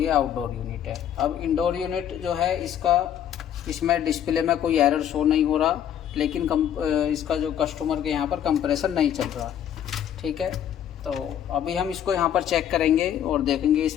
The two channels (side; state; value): right; quieter; 9.9 dB